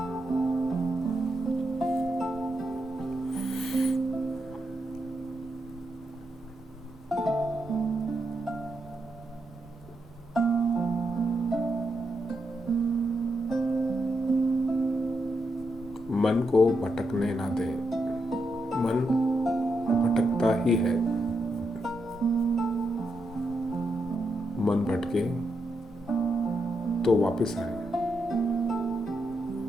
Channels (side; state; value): both; normal; correlation 0.83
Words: मन को भटकने ना दें। मन भटकता ही है। मन भटके तो वापस आए।